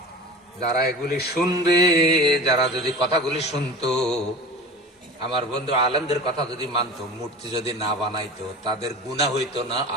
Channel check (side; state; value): both; normal; correlation 0.35